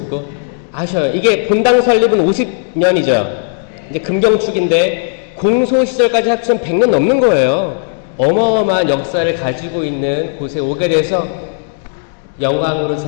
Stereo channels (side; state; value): right; silent; digital silence